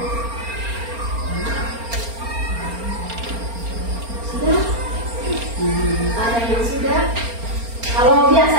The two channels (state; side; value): late; left; 4.3 ms